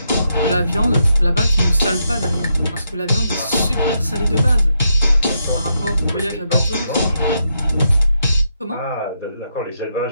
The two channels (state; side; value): inverted; both; correlation -0.81